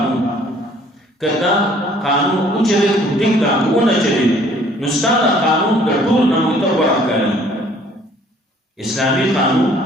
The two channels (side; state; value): both; normal; correlation 0.58